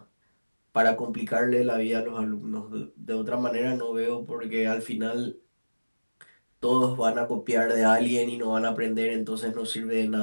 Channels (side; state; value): both; inverted; correlation -1.00